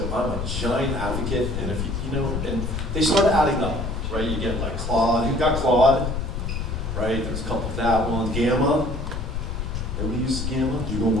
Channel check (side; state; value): left; noise; rumble, 3 dB below the sound